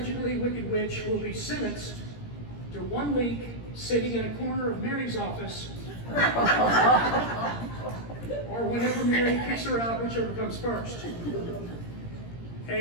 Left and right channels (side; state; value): right; late; 17 ms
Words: wicked witch will be sentenced to 1 week sitting in a corner of Mary's office, or whenever Mary kicks her out, whichever comes first.